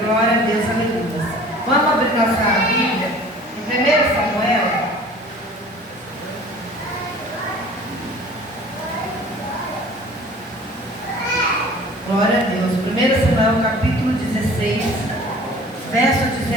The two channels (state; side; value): normal; both; correlation 0.47